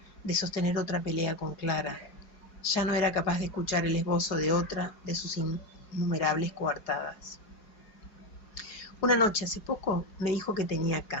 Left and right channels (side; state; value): right; late; 4.8 ms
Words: de sostener otra pelea con Clara. Ya no era capaz de escuchar el esbozo de otra de sus innumerables coartadas. Una noche, hace poco, me dijo que tenía